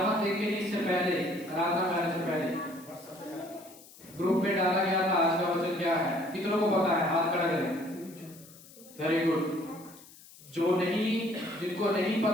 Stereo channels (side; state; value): left; noise; hiss, 21 dB below the sound